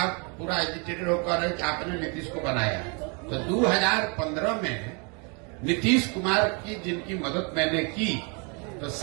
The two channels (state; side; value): quieter; left; 34.0 dB